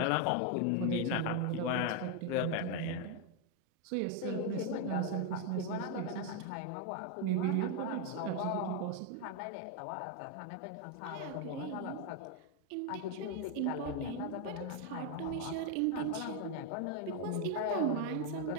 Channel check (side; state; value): both; different; correlation 0.01